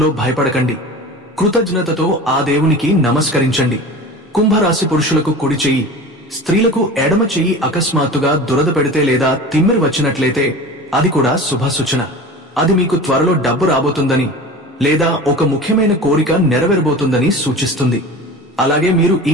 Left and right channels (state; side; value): normal; both; correlation 0.35